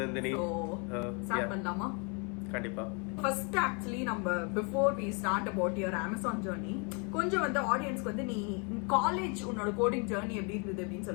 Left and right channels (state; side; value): quieter; right; 34.5 dB